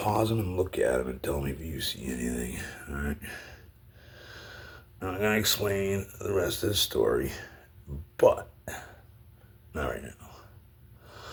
them and look at them and tell me if you see anything. Alright? I'm going to explain the rest of the story. But, not right now.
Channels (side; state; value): both; identical; correlation 1.00